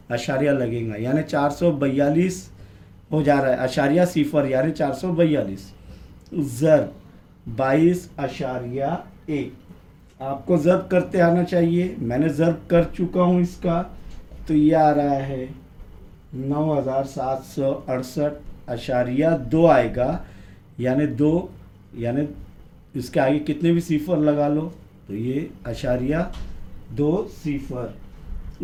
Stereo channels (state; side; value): identical; both; correlation 1.00